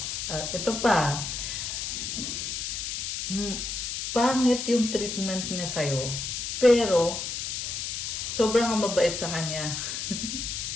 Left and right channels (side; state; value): left; noise; hiss, 4 dB below the sound